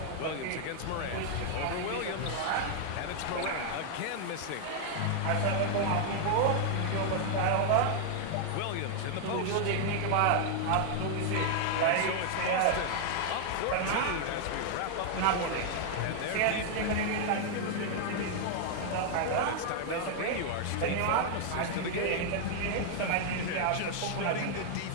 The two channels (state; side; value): different; both; correlation 0.00